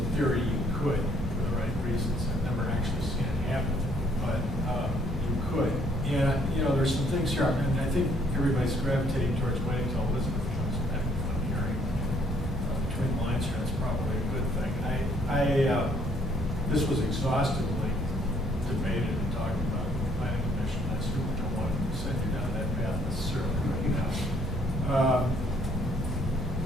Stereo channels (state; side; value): normal; both; correlation 0.64